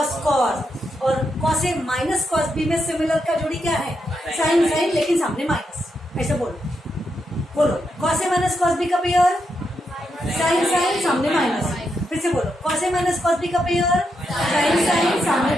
कॉस, और cos A minus cos B में सिमिलर का जोड़ी क्या है, साइन साइन, लेकिन सामने माइनस. ऐसे बोलो, बोलो कॉस ए माइनस कॉस बी का पेयर साइन साइन, सामने माइनस. फिर से बोलो, कॉस ए माइनस कॉस बी का पेयर साइन साइन, सामने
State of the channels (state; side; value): normal; both; correlation 0.83